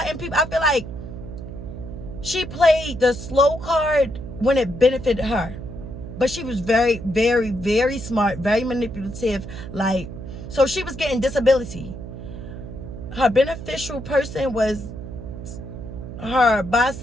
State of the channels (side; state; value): right; noise; hum, 10 dB below the sound